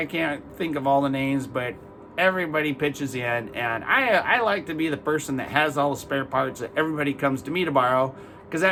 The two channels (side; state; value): both; identical; correlation 1.00